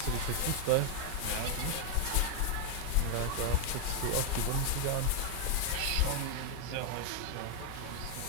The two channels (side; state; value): both; different; correlation 0.00